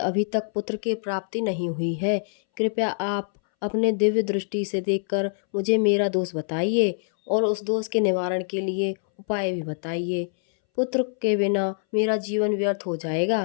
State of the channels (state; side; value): silent; right; 62 dB below the other